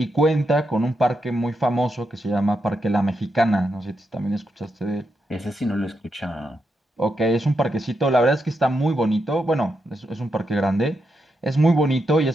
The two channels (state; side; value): normal; both; correlation 0.84